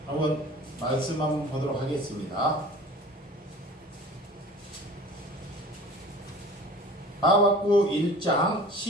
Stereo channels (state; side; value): normal; both; correlation 0.43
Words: 한번 말씀 한번 보도록 하겠습니다. 하박국 1장